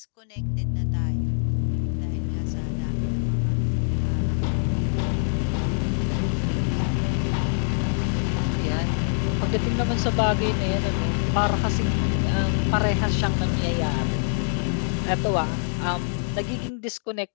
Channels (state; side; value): silent; right; 59 dB below the other